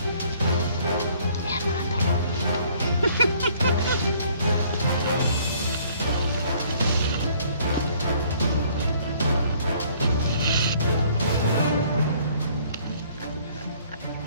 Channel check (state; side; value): inverted; both; correlation -0.60